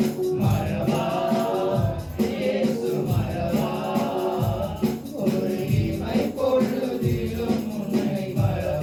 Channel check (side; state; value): both; identical; correlation 1.00